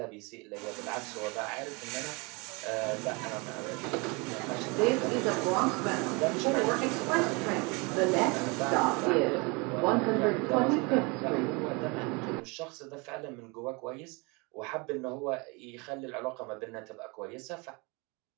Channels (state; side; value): quieter; left; 28.7 dB